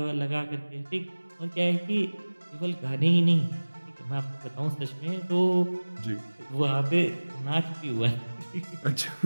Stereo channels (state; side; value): inverted; both; correlation -1.00